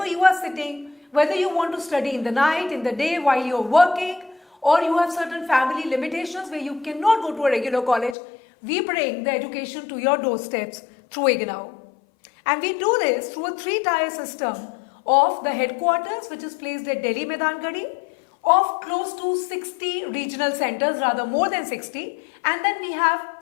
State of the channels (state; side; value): drops out; right; at 8.2 s